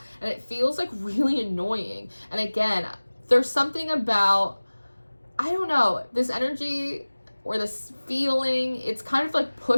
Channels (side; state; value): both; inverted; correlation -1.00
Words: And it feels like really annoying. And again, there's something about, I don't know, this energy or this feeling, it's kind of like